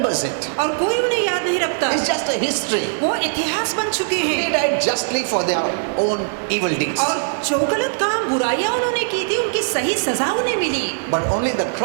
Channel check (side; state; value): left; silent; digital silence